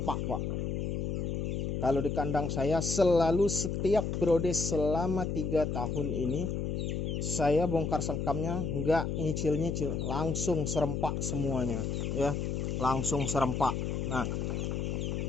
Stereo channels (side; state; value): left; noise; hum, 1 dB below the sound